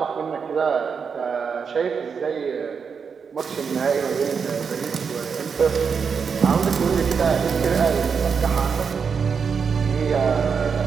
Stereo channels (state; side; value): quieter; left; 6.1 dB